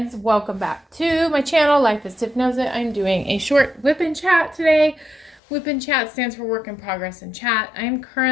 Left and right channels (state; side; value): drops out; right; at 5.4 s